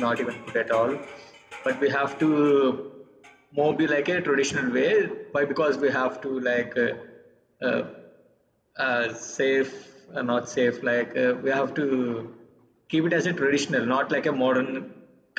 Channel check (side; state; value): both; identical; correlation 1.00